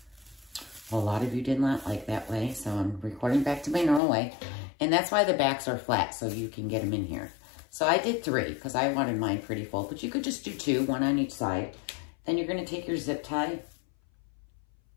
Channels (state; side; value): drops out; right; at 4.0 s